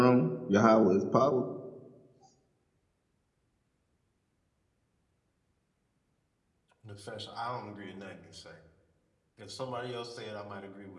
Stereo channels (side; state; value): both; identical; correlation 1.00